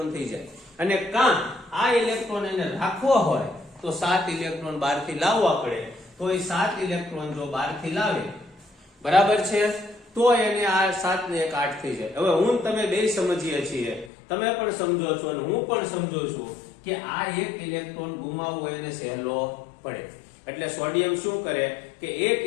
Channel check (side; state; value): right; drops out; at 14.1 s